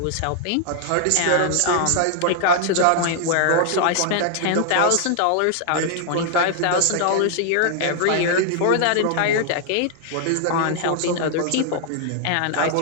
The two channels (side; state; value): both; different; correlation 0.00